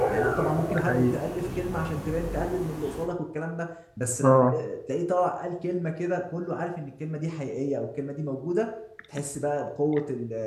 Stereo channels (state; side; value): identical; both; correlation 1.00